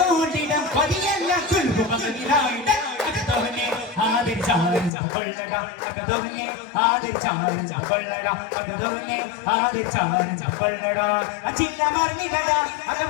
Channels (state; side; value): drops out; right; at 4.9 s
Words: കൊള്ളിടം കൊതിയല്ല കുൽബു മകനിലായിട അകതോനെ ആദരിച്ചാനന്ദ കൊള്ളട അകതോനെ ആദരിച്ചാനന്ദ കൊള്ളട അകതോനെ ആദരിച്ചാനന്ദ കൊള്ളട അച്ചില്ല മർന്നിടട